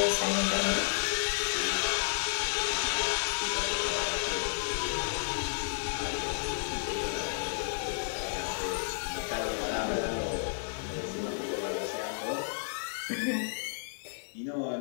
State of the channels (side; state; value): right; silent; digital silence